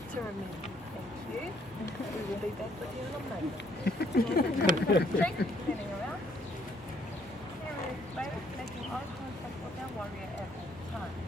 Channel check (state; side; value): normal; both; correlation 0.67